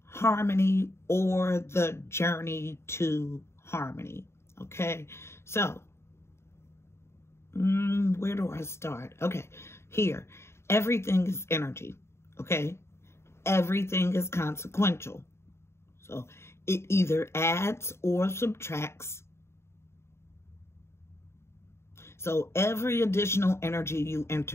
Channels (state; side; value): late; right; 0.13 ms